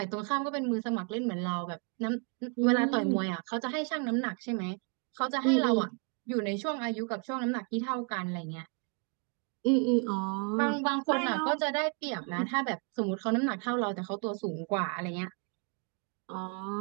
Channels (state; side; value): quieter; left; 38.4 dB